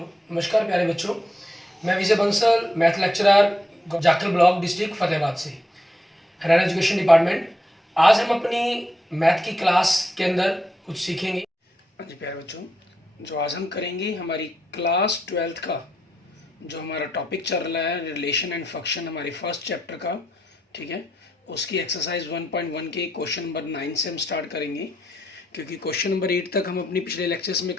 नमस्कार प्यारे बच्चों। मैं Vijay Bansal, math lecturer, Jakhal block, district Fatehabad से, हरियाणा एजुकेशन डिपार्टमेंट। आज हम अपनी मैथ की क्लास के अंदर कुछ सीखेंगे। हाँ जी प्यारे बच्चों, जो आज हम करेंगे हमारी क्लास 12th का जो हमारा टॉपिक चल रहा है रिलेशन एंड फंक्शन, हमारे फर्स्ट चैप्टर का, ठीक है। उसकी एक्सरसाइज 1.1 के क्वेश्चन नंबर 9 से हम स्टार्ट करेंगे, क्योंकि क्वेश्चन नंबर 8 तक हम अपनी पिछले लेक्चर्स में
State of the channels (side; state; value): both; normal; correlation 0.81